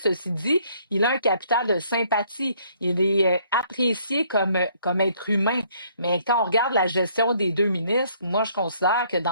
dit, il a un capital de sympathie. Il est apprécié comme être humain. Mais quand on regarde la gestion des deux ministres, moi, je considère que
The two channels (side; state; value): both; inverted; correlation -0.64